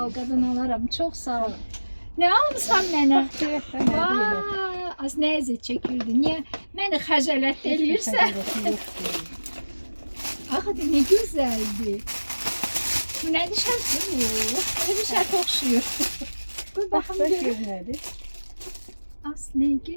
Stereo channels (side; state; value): both; inverted; correlation -1.00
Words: ol kadın alaram. Çok sağ ol. Ne almışsan mənə? Az ne eziyet çekirdi. Niye beni xəcalət eləyirsən? Axı ne güzeldi. Bu ne dışarısı bu? Ne bir şey okşuyor. Dur bakalım görün. As ne